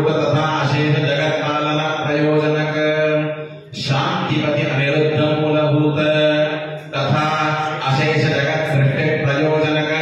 तथा अशेष जगत पालन प्रयोजनक शांतिपति अनिरुद्ध मूलभूत तथा अशेष जगत सृष्टि प्रयोजनक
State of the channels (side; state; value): both; identical; correlation 1.00